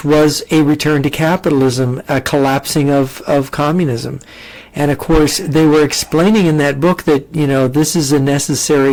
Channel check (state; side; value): identical; both; correlation 1.00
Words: was a return to capitalism, a collapsing of communism. And of course, they were explaining in that book that, this is a